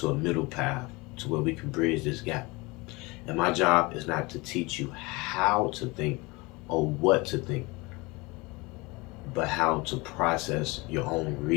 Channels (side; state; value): right; quieter; 24.7 dB